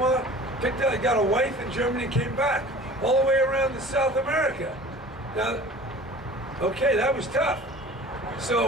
picked out, got a wife in Germany, and came back all the way around to South America. Now, okay, that was tough.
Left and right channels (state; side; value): normal; both; correlation 0.43